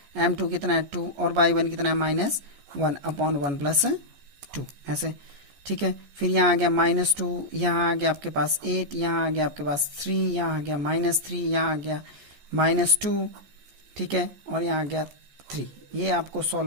m2 कितना है 2 और y1 कितना है -1 अपॉन 1 + 2, ऐसे, ठीक है। फिर यहाँ आ गया -2, यहाँ आ गया आपके पास 8, यहाँ आ गया आपके पास 3, यहाँ आ गया -3, यहाँ आ गया -2, ठीक है, और यहाँ आ गया 3। ये आपको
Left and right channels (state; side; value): late; left; 14 ms